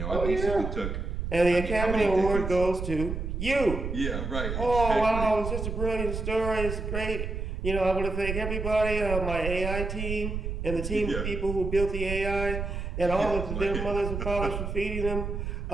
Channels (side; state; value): right; noise; rumble, 4 dB below the sound